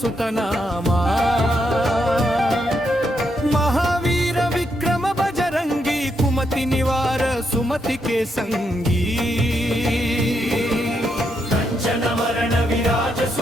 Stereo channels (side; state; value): both; normal; correlation 0.80